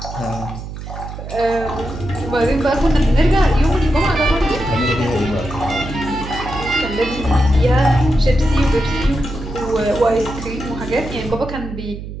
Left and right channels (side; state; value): right; noise; hum, 10 dB below the sound